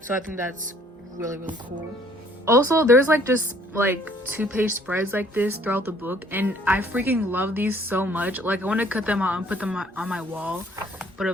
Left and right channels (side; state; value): both; normal; correlation 0.60